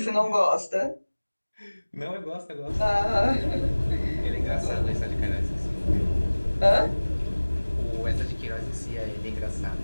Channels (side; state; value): both; inverted; correlation -1.00